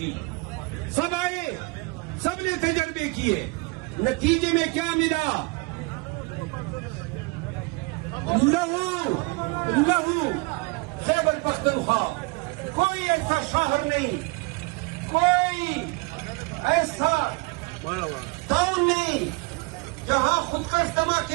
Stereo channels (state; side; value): quieter; left; 28.3 dB